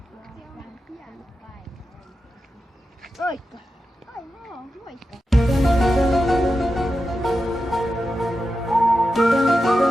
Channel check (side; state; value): both; normal; correlation 0.90